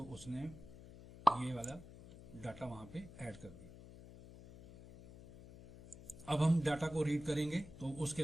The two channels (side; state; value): left; noise; hum, 17 dB below the sound